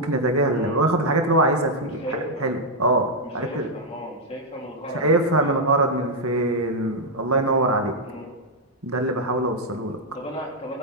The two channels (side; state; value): both; normal; correlation -0.02